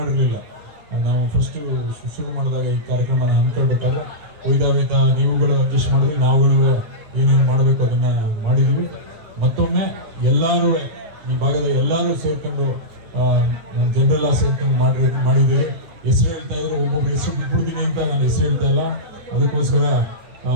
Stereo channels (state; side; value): late; left; 9.9 ms